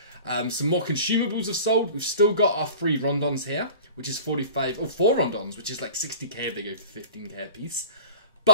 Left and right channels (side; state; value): both; inverted; correlation -0.41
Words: Some more consumables have sold. We've still got our 3 rondons here, which is 45, or 4 rondons, which is like 60k if they go for 15k a piece.